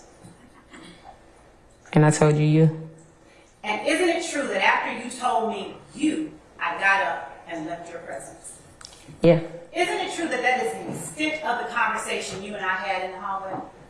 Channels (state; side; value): identical; both; correlation 1.00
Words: And I told you. And isn't it true that after you told me you, I got up and left your presence? Yeah. Isn't it true that that is the extent of the conversation